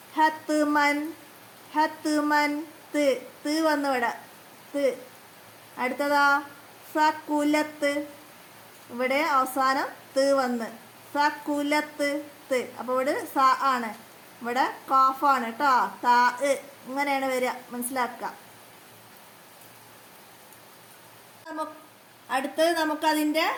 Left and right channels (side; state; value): both; identical; correlation 1.00